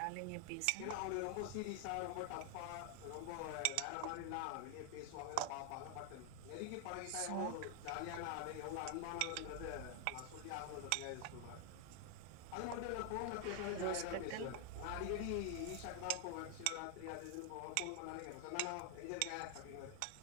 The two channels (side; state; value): both; different; correlation 0.00